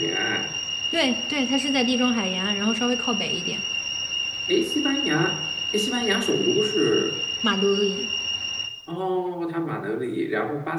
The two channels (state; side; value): identical; both; correlation 1.00